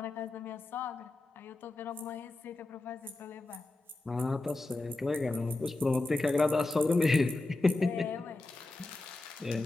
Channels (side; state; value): right; quieter; 3.0 dB